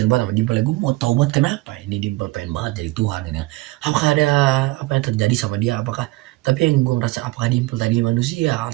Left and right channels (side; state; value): left; quieter; 20.4 dB